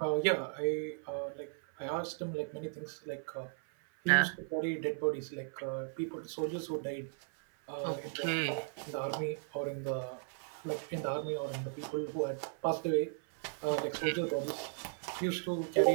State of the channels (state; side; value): silent; left; 54 dB below the other